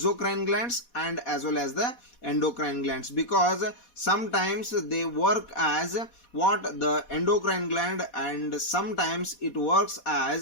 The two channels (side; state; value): right; late; 4.2 ms